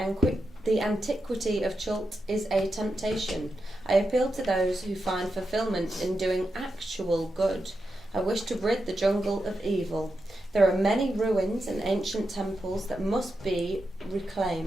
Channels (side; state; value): both; normal; correlation 0.88